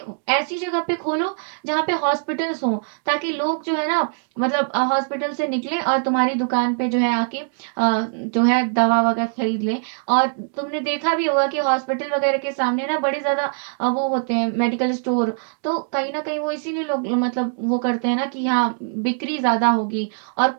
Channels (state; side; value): silent; left; digital silence